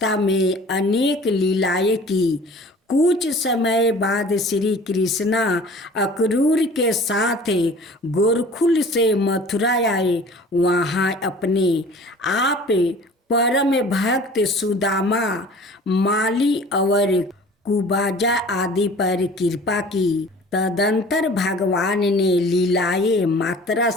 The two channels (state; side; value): normal; both; correlation 0.46